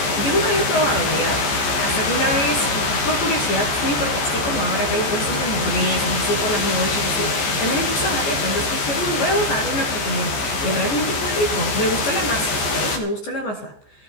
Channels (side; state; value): right; late; 14 ms